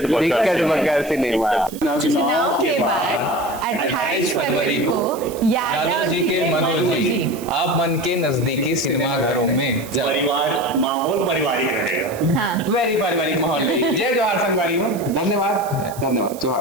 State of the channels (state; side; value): noise; right; hiss, 17 dB below the sound